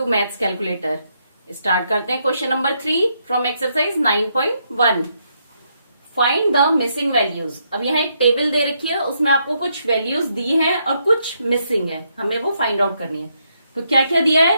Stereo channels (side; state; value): both; inverted; correlation -0.76